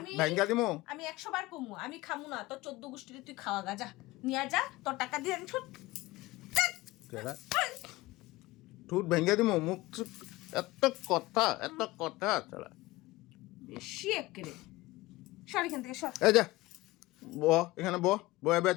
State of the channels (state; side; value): quieter; right; 19.4 dB